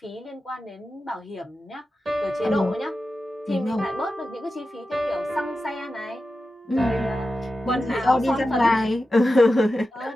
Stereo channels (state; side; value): normal; both; correlation 0.92